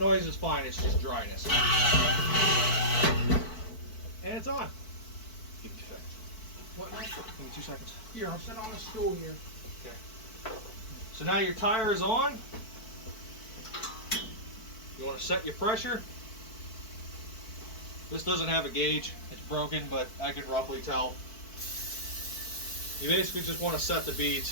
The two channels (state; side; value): late; right; 4.6 ms